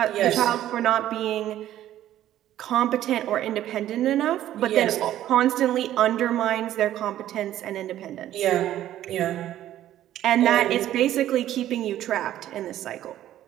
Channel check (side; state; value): left; quieter; 12.6 dB